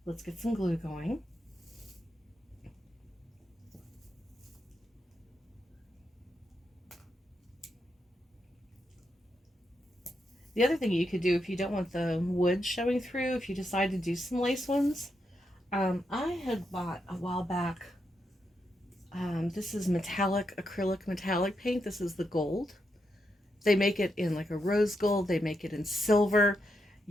Let's get some glue going. The other thing you could do if you don't want the wood showing through, if you decide to do some lace ones, I had bought a while back, this is acrylic metallic paint. This is the gold. They make it in like a rose gold. They make it in silver.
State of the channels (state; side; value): normal; both; correlation 0.83